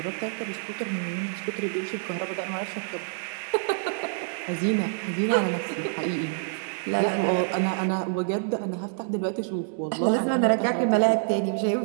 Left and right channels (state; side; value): silent; left; digital silence